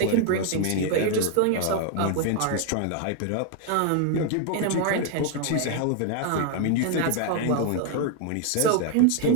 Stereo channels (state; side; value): different; both; correlation 0.00